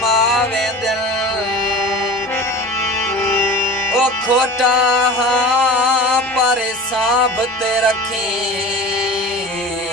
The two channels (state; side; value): normal; both; correlation 0.35